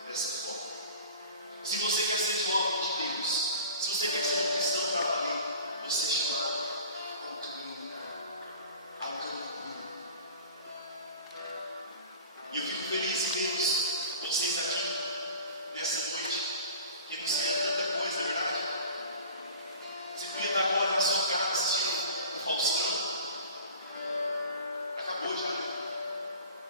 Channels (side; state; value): both; inverted; correlation -0.40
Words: dessa forma. Se você quer ser jovem de Deus, se você quer ser um cristão para valer, você é chamado ao caminho puro. E eu fico feliz em ver vocês aqui nessa noite, que não sei tanta coisa, é verdade? Você podia estar agora na sua casa assistindo o Faustão. Acabou já, né?